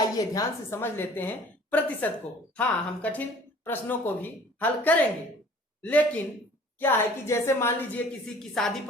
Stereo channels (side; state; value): both; normal; correlation 0.50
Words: ध्यान से समझ लेते हैं प्रतिशत को। हाँ, हम कठिन प्रश्नों को भी हल करेंगे, लेकिन क्या है कि जैसे मान लीजिए किसी की शादी